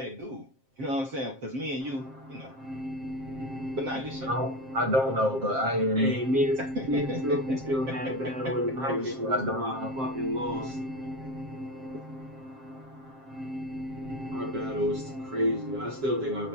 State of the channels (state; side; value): late; left; 7.6 ms